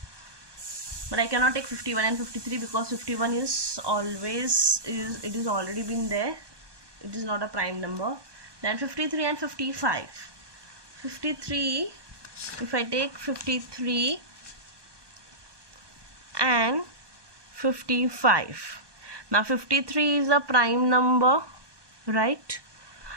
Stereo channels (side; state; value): left; late; 1.2 ms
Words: but I cannot take 51 and 53 because 51 is always, it is already been there, it is not a prime number. Then 53 and 55. 53, if I take 53 and 55, now 53 is a prime number, right?